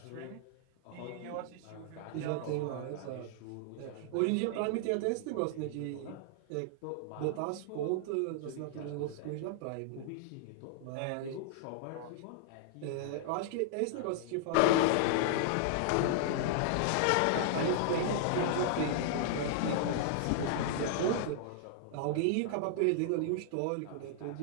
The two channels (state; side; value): different; both; correlation -0.01